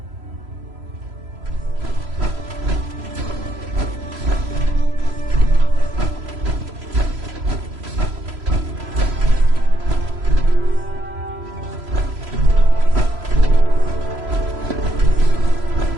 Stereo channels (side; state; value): left; late; 3.0 ms